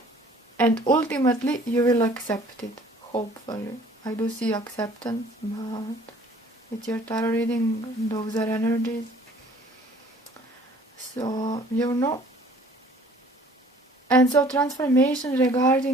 and ultimately you will accept it, hopefully. I do see acceptance, but with your tarot reading, those are energies. So, you know. And so transformation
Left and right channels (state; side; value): normal; both; correlation 0.54